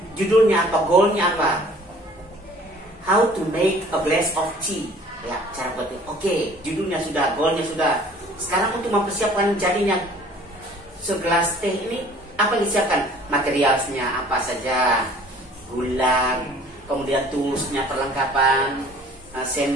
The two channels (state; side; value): normal; both; correlation 0.52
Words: Judulnya apa, goalnya apa? How to make a glass of tea. Ya, cara buat teh. Oke, judulnya sudah, goalnya sudah. Sekarang untuk mempersiapkan jadinya segelas teh ini, apa yang disiapkan? Materialnya apa saja? Gula, kemudian tulusnya, perlengkapan,